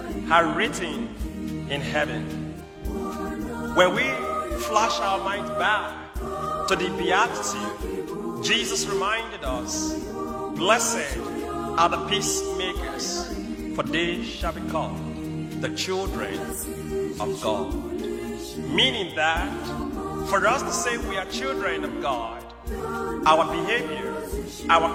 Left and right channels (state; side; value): identical; both; correlation 1.00